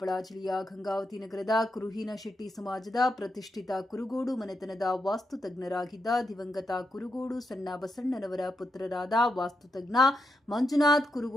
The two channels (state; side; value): normal; both; correlation 0.84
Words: ಜಿಲ್ಲೆಯ ಗಂಗಾವತಿ ನಗರದ ಕುರುಹಿನಶೆಟ್ಟಿ ಸಮಾಜದ ಪ್ರತಿಷ್ಠಿತ ಕುರುಗೋಡು ಮನೆತನದ ವಾಸ್ತುತಜ್ಞರಾಗಿದ್ದ ದಿವಂಗತ ಕುರುಗೋಡು ಸಣ್ಣ ಬಸಣ್ಣನವರ ಪುತ್ರರಾದ ವಾಸ್ತುತಜ್ಞ ಮಂಜುನಾಥ್